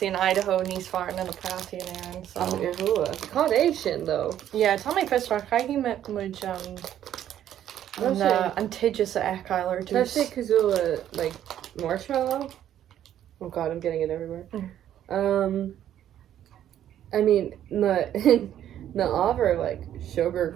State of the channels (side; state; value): left; quieter; 11.1 dB